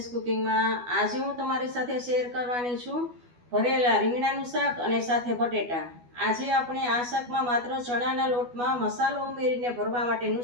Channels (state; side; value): late; left; 12 ms